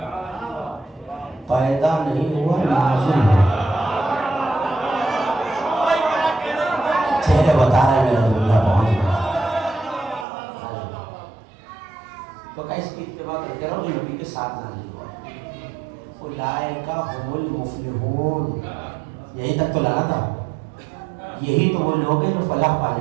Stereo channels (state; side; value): drops out; left; at 10.2 s